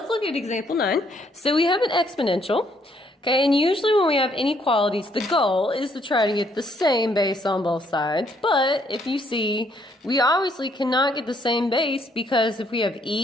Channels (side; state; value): both; normal; correlation 0.69